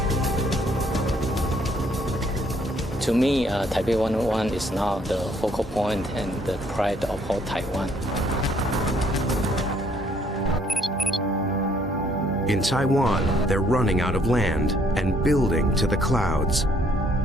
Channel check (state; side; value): normal; both; correlation 0.65